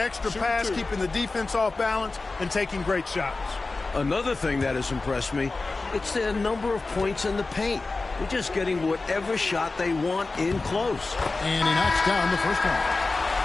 pass, keeping the defense off balance, and taking great shots. Another thing that has impressed me, it's their number of points in the paint. They're just getting whatever shot they want in close. And he knocks down the first one.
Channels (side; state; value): right; quieter; 3.6 dB